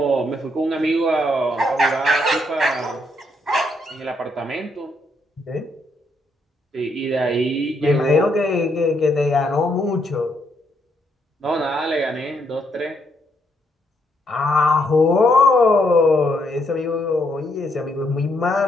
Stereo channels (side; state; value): both; normal; correlation 0.75